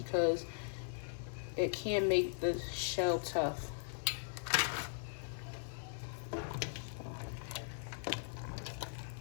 it can make the shell tough.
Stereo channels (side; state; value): right; silent; 52 dB below the other